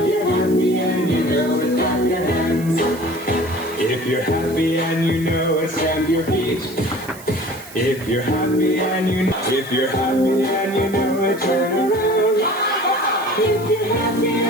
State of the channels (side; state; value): right; noise; hiss, 18 dB below the sound